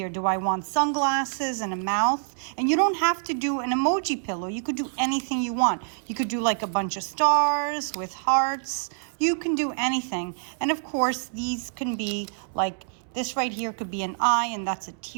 Do I want sunglasses and a mouth? And you don't have to do an emoji pillow. You could do anything you want. You could do like a bunch of stars with hearts. You can do anything. And of course, these can be like this right here could be an eye, and that's a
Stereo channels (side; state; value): left; silent; 61 dB below the other